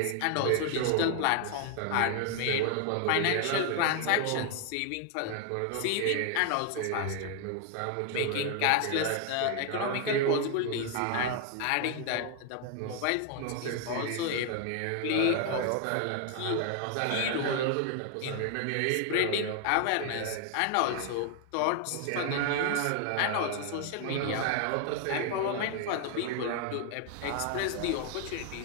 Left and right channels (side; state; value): both; different; correlation 0.00